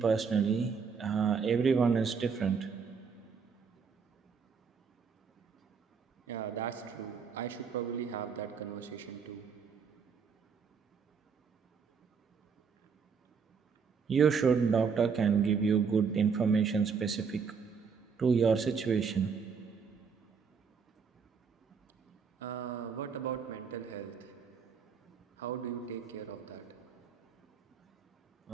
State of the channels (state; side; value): quieter; left; 5.9 dB